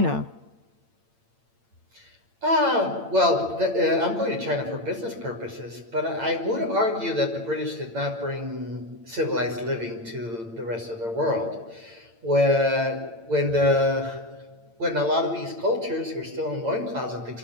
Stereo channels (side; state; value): left; late; 8.8 ms